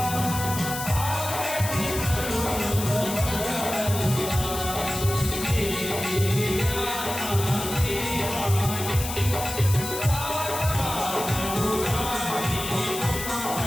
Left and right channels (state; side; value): noise; left; hiss, 7 dB below the sound